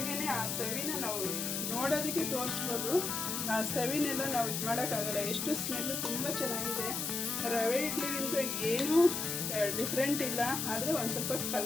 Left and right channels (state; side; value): noise; left; hiss, 2 dB below the sound